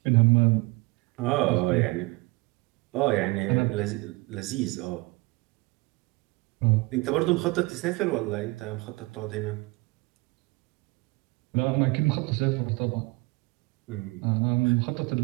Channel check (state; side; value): quieter; left; 24.1 dB